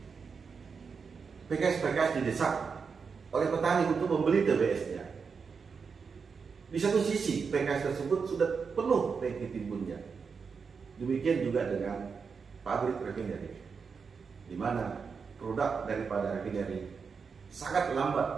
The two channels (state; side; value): quieter; left; 5.6 dB